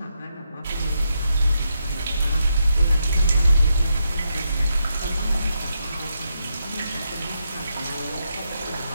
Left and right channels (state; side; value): inverted; both; correlation -0.82